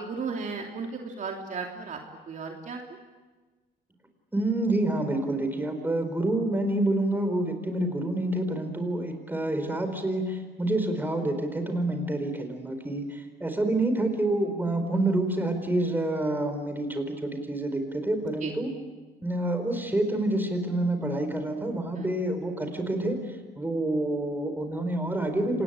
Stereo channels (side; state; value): both; normal; correlation 0.72